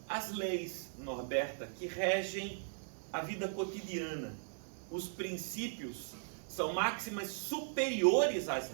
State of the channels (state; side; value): silent; left; digital silence